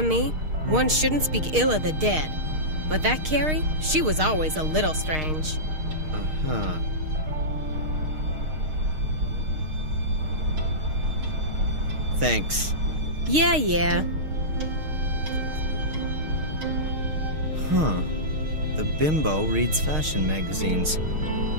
me, one shouldn't speak ill of the dead. But that Carrie, she was always a little strange. Uh-huh. Thanks. Yeah. Huh. The bimbo reads fashion magazines.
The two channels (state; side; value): late; left; 6.5 ms